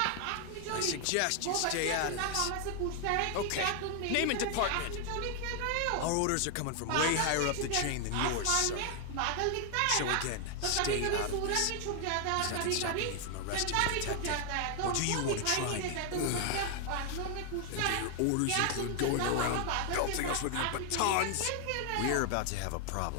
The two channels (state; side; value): different; both; correlation 0.00